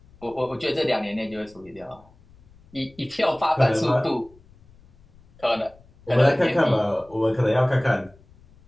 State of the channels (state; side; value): noise; left; rumble, 27 dB below the sound